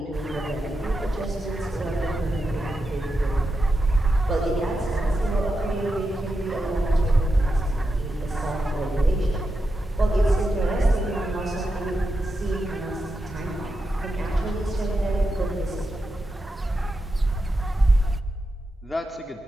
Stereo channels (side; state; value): both; normal; correlation 0.88